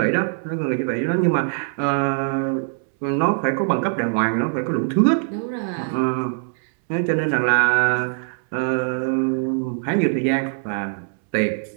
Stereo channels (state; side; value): silent; left; 63 dB below the other